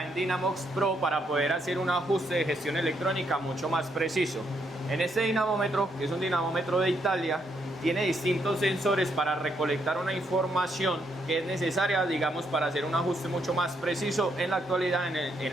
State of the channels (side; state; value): both; normal; correlation 0.75